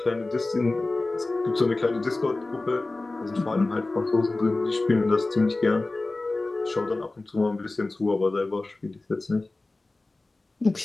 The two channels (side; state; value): right; quieter; 3.1 dB